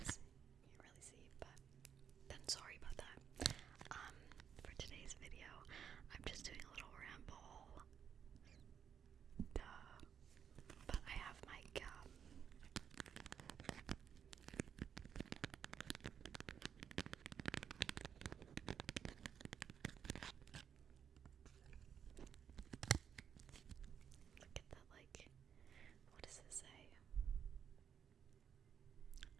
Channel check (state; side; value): quieter; left; 7.9 dB